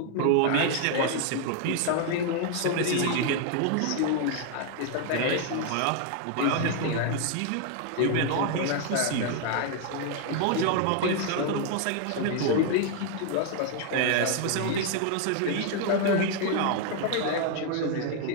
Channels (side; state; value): both; different; correlation 0.00